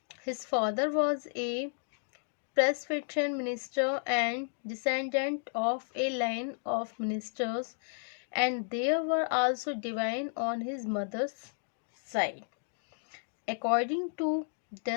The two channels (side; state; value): right; silent; digital silence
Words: His father was a Presbyterian minister and descendant of a line of ministers, and there were also divine on his mother's side. According to